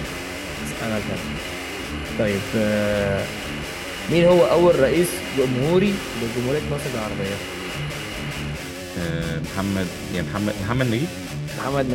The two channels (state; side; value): identical; both; correlation 1.00